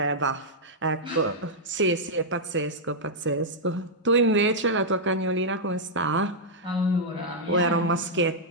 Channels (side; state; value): both; normal; correlation -0.07